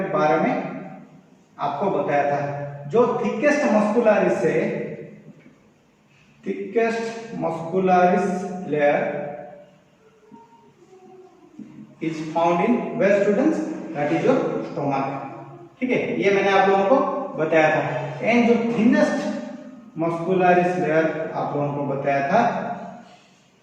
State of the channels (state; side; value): identical; both; correlation 1.00